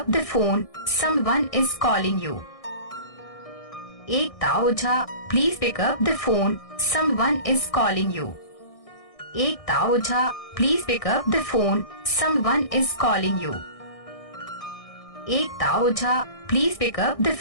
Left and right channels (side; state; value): right; late; 1.6 ms